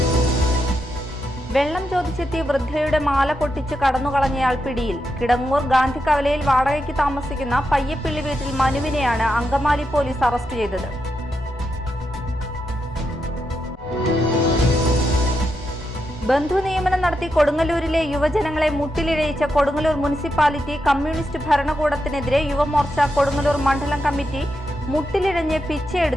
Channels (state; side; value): normal; both; correlation 0.85